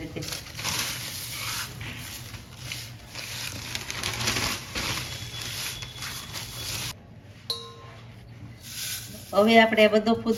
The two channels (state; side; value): identical; both; correlation 1.00